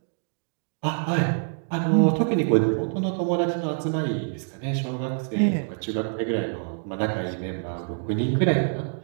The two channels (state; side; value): silent; left; digital silence